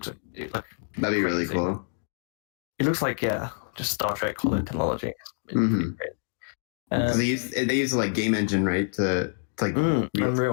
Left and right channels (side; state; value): right; silent; digital silence